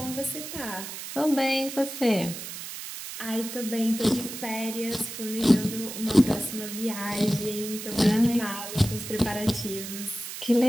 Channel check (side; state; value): right; noise; hiss, 9 dB below the sound